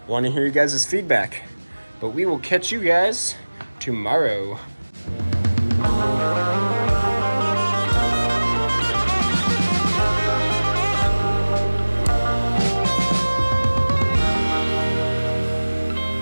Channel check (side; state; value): both; inverted; correlation -1.00